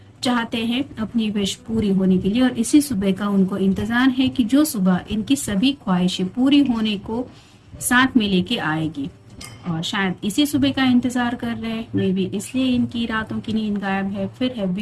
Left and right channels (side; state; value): both; identical; correlation 1.00